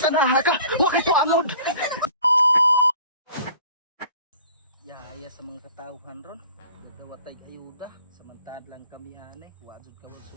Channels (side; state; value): both; inverted; correlation -0.49